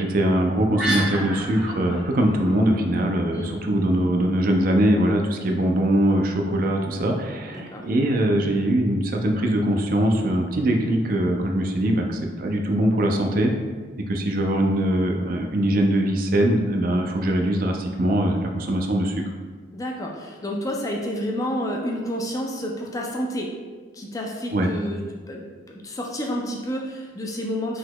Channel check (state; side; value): normal; both; correlation 0.75